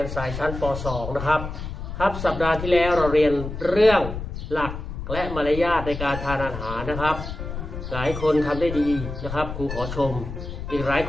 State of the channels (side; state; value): left; noise; rumble, 7 dB below the sound